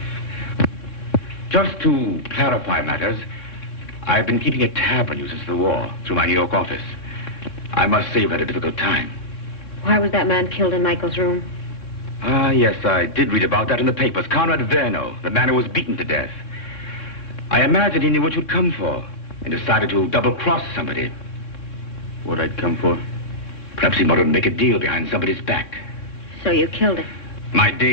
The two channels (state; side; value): late; right; 3.7 ms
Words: Just to clarify matters, I've been keeping a tab on you since the war, through my New York office. I must say you've had a difficult time. Why was that man killed in Michael's room? Ah, yes, I did read about that in the papers. Conrad Verno, the man who was beaten to death. I imagined he knew what you'd come for and decided to double-cross somebody. What I'd come for? Perhaps he wanted to make a deal behind somebody's back. So you killed him? My dear